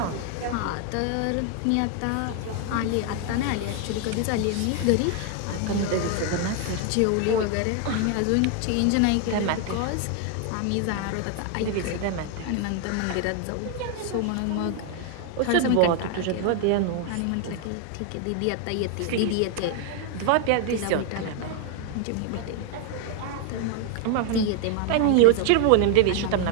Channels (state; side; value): different; both; correlation 0.01